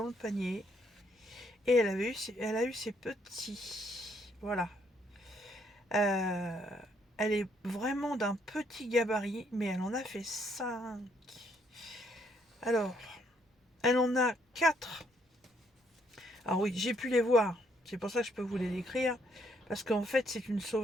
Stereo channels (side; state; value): both; normal; correlation 0.70